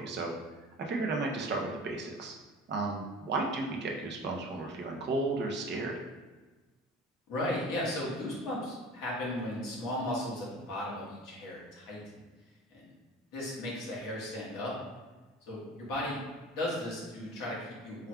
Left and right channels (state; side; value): normal; both; correlation 0.39